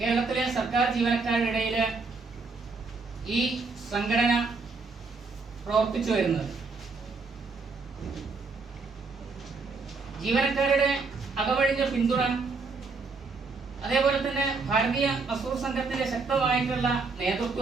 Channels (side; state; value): left; quieter; 4.2 dB